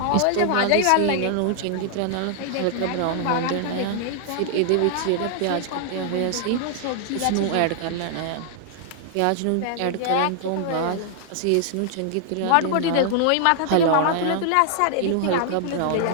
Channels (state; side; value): different; both; correlation 0.00